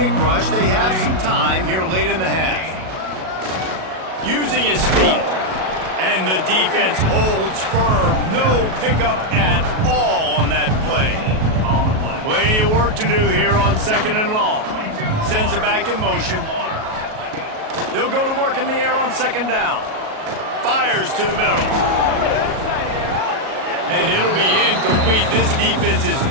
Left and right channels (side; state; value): left; late; 37 ms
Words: rush. They have some time here late in the half. Using his feet. And the defense holds firm. No pickup at all on that play. Plenty of work to do here on 2nd and long. Sends it back in motion. They'll go to work in the air on 2nd down. Fires to the middle. And it'll be incomplete. This defense is